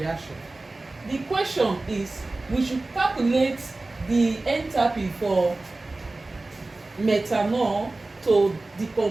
The question is, we should calculate the enthalpy for methanol to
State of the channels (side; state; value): left; quieter; 3.1 dB